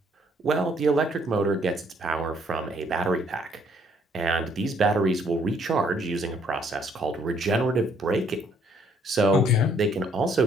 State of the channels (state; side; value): normal; both; correlation 0.66